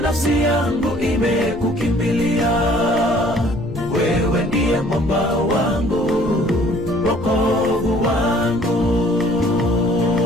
nafsi yangu imekukimbilia. Wewe ndiye mwamba wangu, wokovu wangu.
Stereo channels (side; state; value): left; noise; rumble, 14 dB below the sound